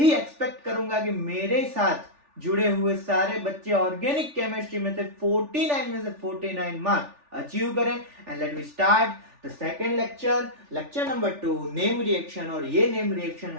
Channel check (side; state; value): left; late; 3.4 ms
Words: एक्सपेक्ट करूंगा कि मेरे साथ जुड़े हुए सारे बच्चे ऑर्गेनिक केमिस्ट्री में से 49 मार्क्स अचीव करें। And let we start the second lecture number 2, name reaction. और ये नेम रिएक्शन